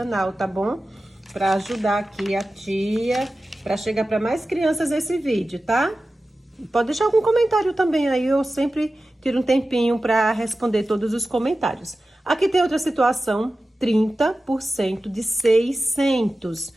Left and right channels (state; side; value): normal; both; correlation 0.94